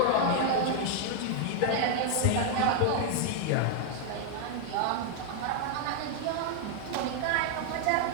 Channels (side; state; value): both; different; correlation 0.00